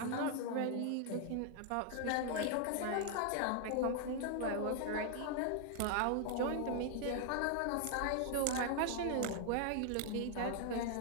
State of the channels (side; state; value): both; different; correlation 0.00